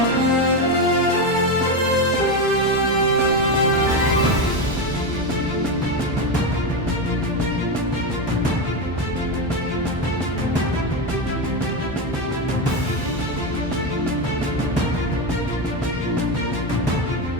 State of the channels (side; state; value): both; normal; correlation 0.13